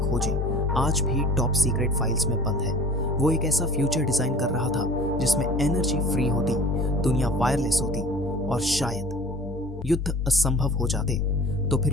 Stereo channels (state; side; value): normal; both; correlation 0.45